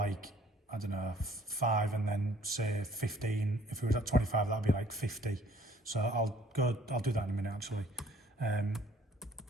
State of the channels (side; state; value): both; normal; correlation 0.58